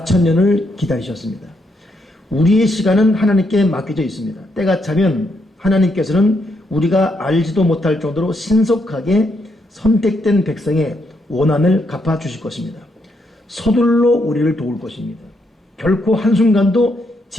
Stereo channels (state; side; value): normal; both; correlation 0.78